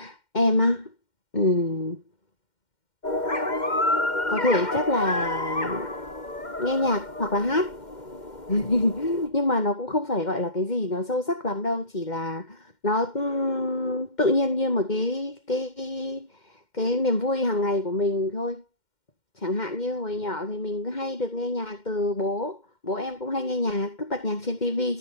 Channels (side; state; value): right; late; 2.1 ms